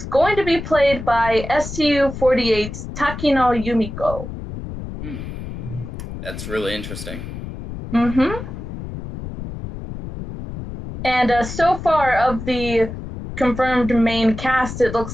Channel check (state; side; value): noise; left; rumble, 9 dB below the sound